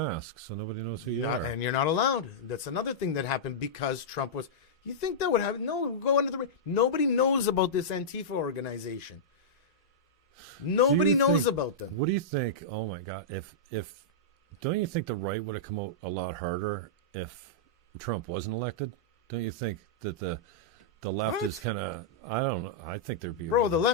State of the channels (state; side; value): normal; both; correlation -0.12